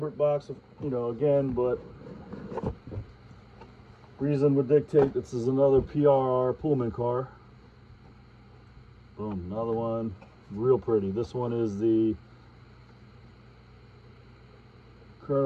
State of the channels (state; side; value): identical; both; correlation 1.00